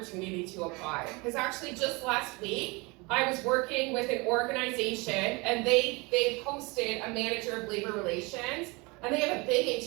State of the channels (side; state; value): left; quieter; 26.6 dB